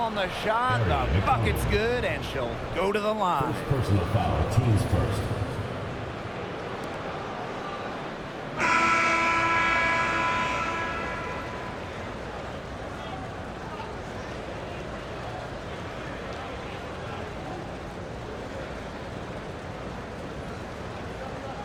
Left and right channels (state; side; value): identical; both; correlation 1.00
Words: the shot. The bucket's good, and she'll go to the line. First personal foul. Teams first.